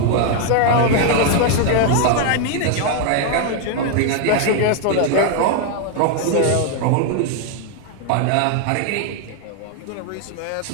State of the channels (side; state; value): both; different; correlation 0.01